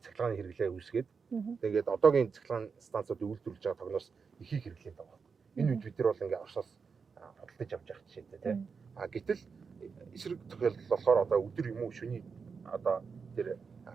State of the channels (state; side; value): quieter; left; 5.5 dB